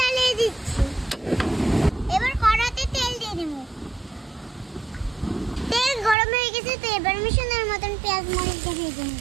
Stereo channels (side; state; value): left; drops out; at 6.2 s